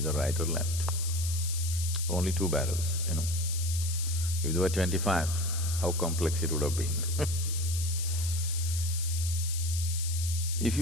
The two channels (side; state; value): left; noise; hiss, 6 dB below the sound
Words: right or left. Only two barrels, you know. If there were 25, how complex it would have been. If